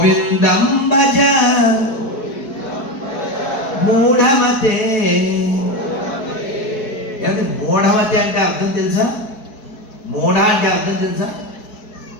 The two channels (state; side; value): late; right; 4.6 ms